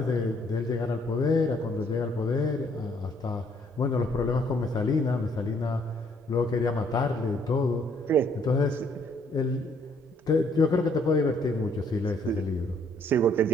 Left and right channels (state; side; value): normal; both; correlation 0.66